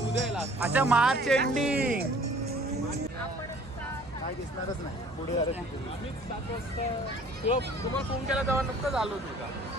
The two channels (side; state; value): both; normal; correlation 0.52